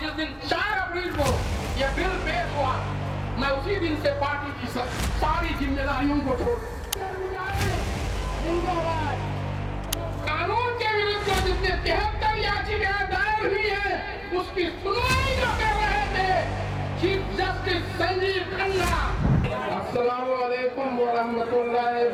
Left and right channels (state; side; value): identical; both; correlation 1.00